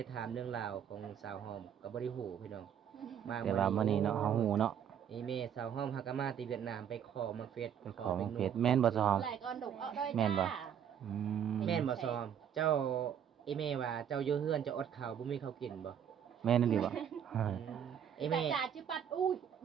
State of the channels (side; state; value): left; quieter; 8.8 dB